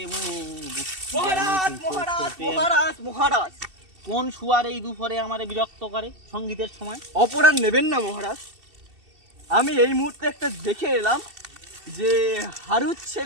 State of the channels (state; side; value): late; left; 2.7 ms